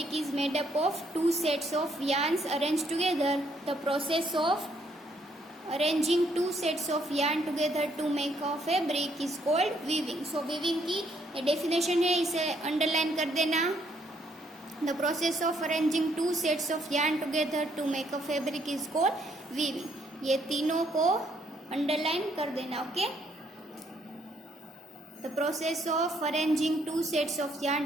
is made up of two sets of yarns arranged together. The process of arranging two sets of yarn together to make a fabric is called weaving. So weaving की definition है, इसे underline कर देना. The process of arranging two sets of yarn together to make a fabric is called weaving. ये तीनों को underline कर देना, okay? The process of arranging two sets of yarn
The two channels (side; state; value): both; normal; correlation 0.70